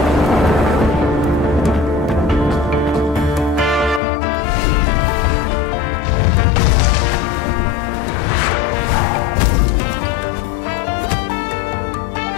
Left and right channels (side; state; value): right; drops out; at 4.0 s